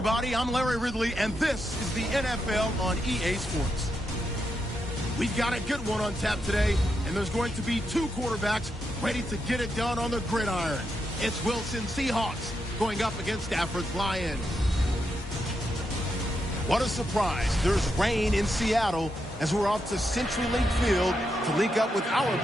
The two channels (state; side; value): normal; both; correlation 0.83